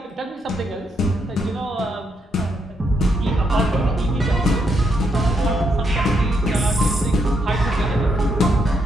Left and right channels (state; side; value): normal; both; correlation 0.77